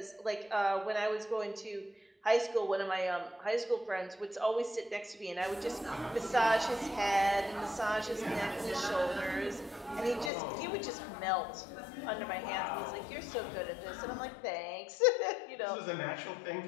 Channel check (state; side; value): drops out; right; at 10.3 s